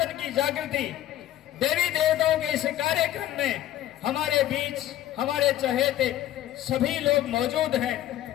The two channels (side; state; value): right; quieter; 13.2 dB